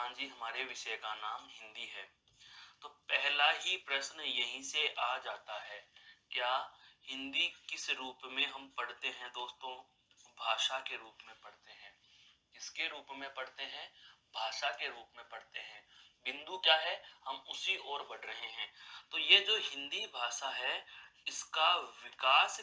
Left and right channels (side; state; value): both; identical; correlation 1.00